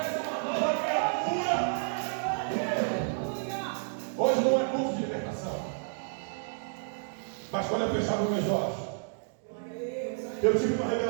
uma nova criatura. Hoje não é culto de libertação. Mas quando eu fechava os meus olhos, eu tive uma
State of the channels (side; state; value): left; silent; digital silence